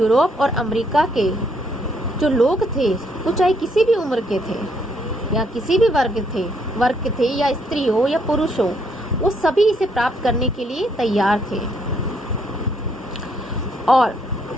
और अमेरिका के जो लोग थे, वो चाहे किसी भी उम्र के थे या किसी भी वर्ग थे या स्त्री हो या पुरुष हो, वो सभी इसे प्राप्त करने के लिए तैयार थे। और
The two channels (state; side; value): normal; both; correlation 0.71